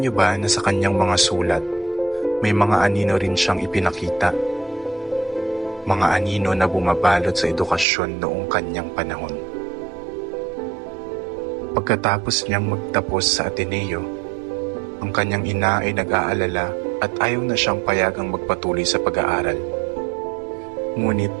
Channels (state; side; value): drops out; left; at 7.9 s